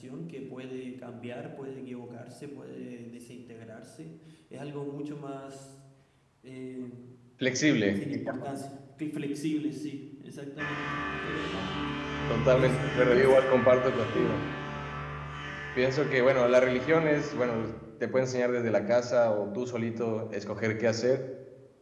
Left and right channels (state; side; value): identical; both; correlation 1.00